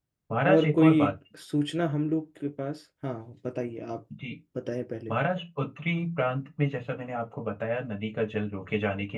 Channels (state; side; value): identical; both; correlation 1.00